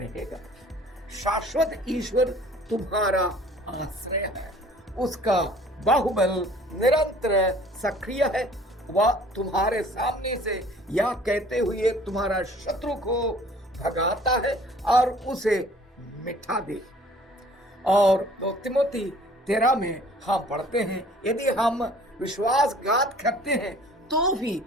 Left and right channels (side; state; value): both; normal; correlation 0.52